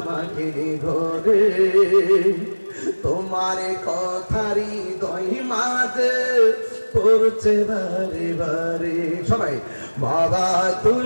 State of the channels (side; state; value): both; inverted; correlation -1.00